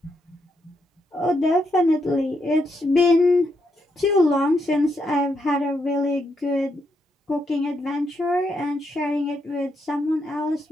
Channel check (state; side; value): normal; both; correlation 0.80